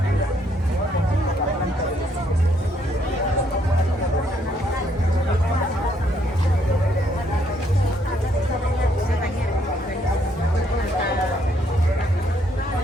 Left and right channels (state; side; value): normal; both; correlation 0.70